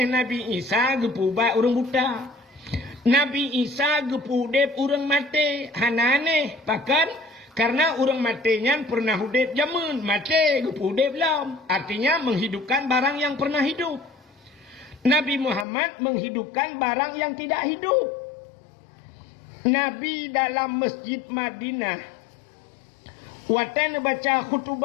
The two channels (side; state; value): right; drops out; at 15.7 s